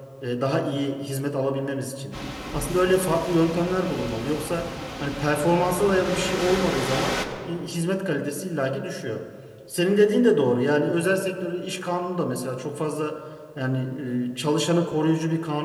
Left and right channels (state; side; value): identical; both; correlation 1.00